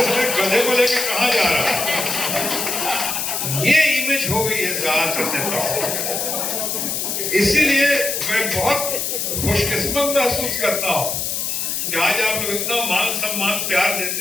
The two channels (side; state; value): left; noise; hiss, 1 dB below the sound